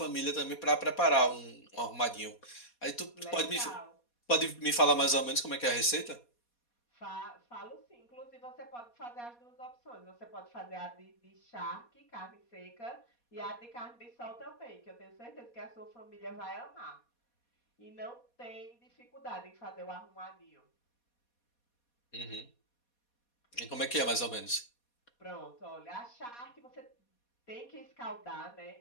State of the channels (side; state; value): right; late; 4.2 ms